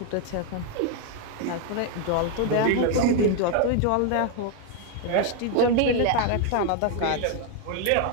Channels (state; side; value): different; both; correlation 0.01